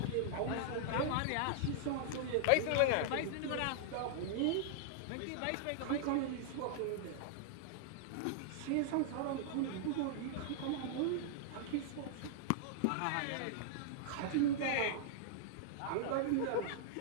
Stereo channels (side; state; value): both; different; correlation -0.01